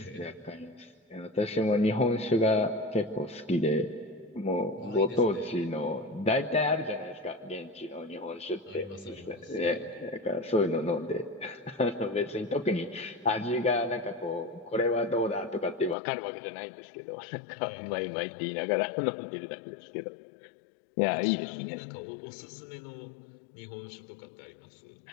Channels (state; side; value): drops out; right; at 16.0 s